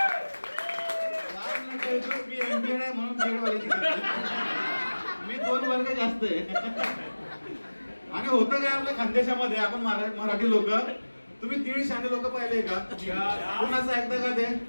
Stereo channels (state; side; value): inverted; both; correlation -1.00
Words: मी MPEd आहे म्हणून BEd वाल्याची मी 2 वर्ग जास्त आहे. आणि होतं काय आपल्या खानदेशामध्ये, आपण मराठी लोक, तुम्ही 1.5 शाणे लोक पाहिले का? कोणाचं ऐकतं का ते?